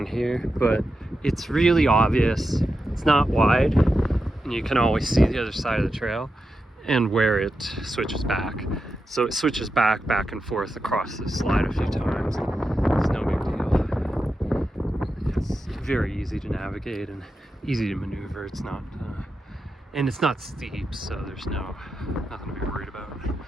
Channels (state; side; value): normal; both; correlation 0.89